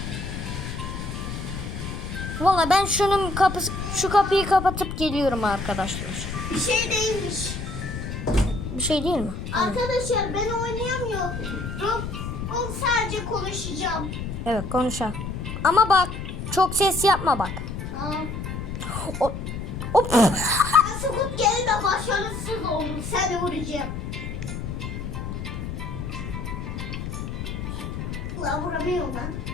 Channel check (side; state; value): left; noise; rumble, 6 dB below the sound